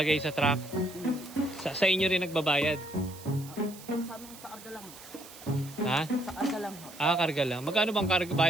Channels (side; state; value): right; noise; hiss, 17 dB below the sound